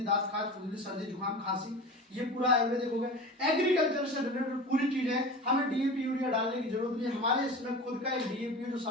दांत खाज, खुजली, सर्दी, जुकाम, खांसी, ये पूरा आयुर्वेदिक हो गया। एग्रीकल्चर से रिलेटेड पूरी चीजें, हमें डीएपी यूरिया डालने की जरूरत नहीं। हमारे इसमें खुद का एक डीएपी जो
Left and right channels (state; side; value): normal; both; correlation 0.33